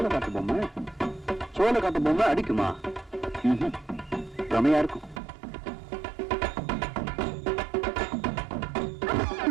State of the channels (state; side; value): drops out; left; at 5.2 s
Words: சோள காட்டு பொம்மை அடிக்குமா? ரமையா இருக்கும்.